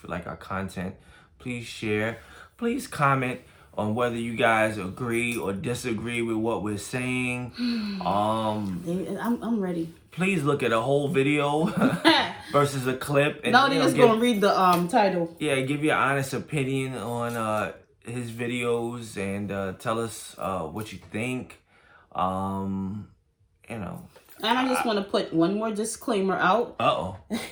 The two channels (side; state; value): both; identical; correlation 1.00